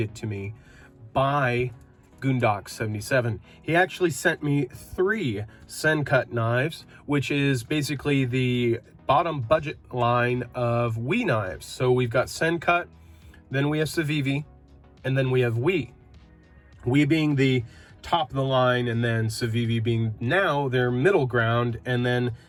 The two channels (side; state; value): both; identical; correlation 1.00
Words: to me by Goondocks 77. He actually sent me 3 Sencut knives, which is basically the bottom budget line of WE knives. So we've got Sencut, then we have Civivi, and then we have WE. WE being the top of the line, and then Civivi being now their middle ground, and then